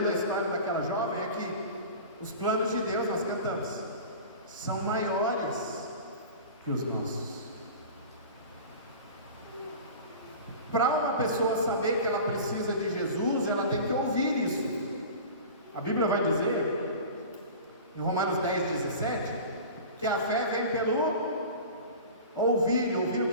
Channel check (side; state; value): both; inverted; correlation -0.36